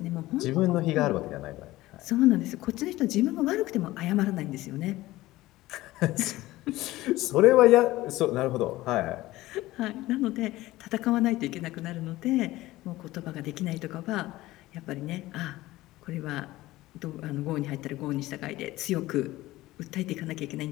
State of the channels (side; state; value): right; quieter; 17.5 dB